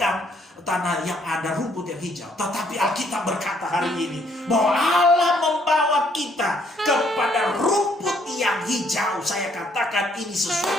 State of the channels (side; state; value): both; normal; correlation 0.67